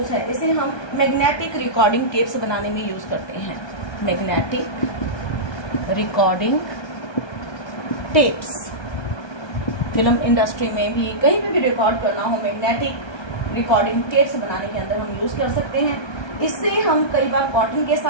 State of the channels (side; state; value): right; late; 1.2 ms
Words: है? इसे हम मैग्नेटिक रिकॉर्डिंग टेप्स बनाने में यूज करते हैं। Magnetic recording tapes, film industry में भी, कहीं पे भी रिकॉर्ड करना हो, मैग्नेटिक रिकॉर्डिंग टेप्स बनाने के अंदर हम यूज कर सकते हैं। इससे हम कई बार कॉटन के